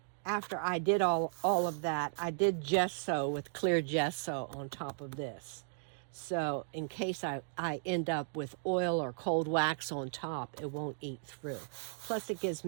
I did all of that, I did gesso with clear gesso on top of this. So in case I end up with oil or cold wax on top, it won't eat through. Plus it gives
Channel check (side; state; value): left; silent; digital silence